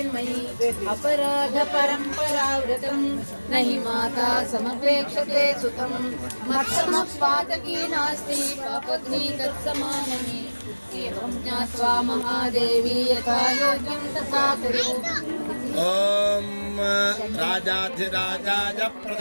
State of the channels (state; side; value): inverted; both; correlation -1.00